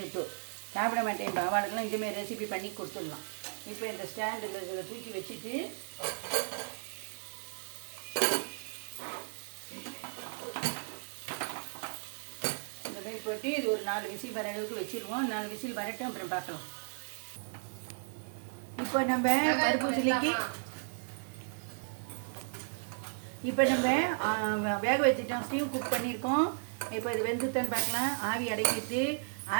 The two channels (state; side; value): silent; left; digital silence